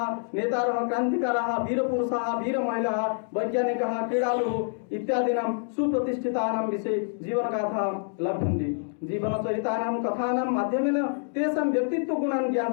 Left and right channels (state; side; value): silent; right; digital silence